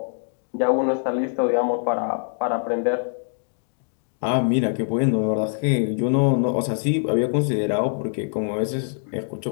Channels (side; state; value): right; silent; digital silence